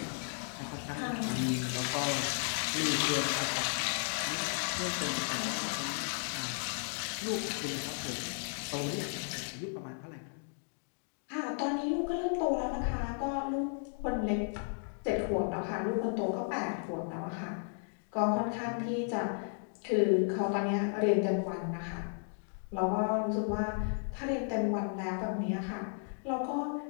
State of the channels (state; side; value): silent; right; 55 dB below the other